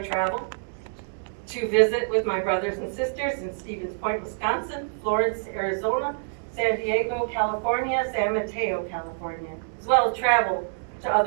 to visit with my brothers and sisters in Stevens Point, Wisconsin, Florence, Arizona, San Diego, California, San Mateo, California, as well as travel to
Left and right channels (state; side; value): silent; left; digital silence